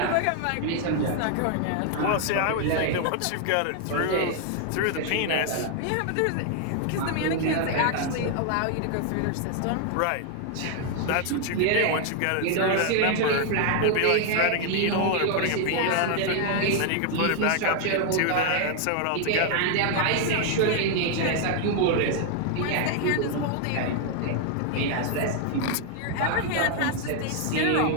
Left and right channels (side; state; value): both; different; correlation 0.00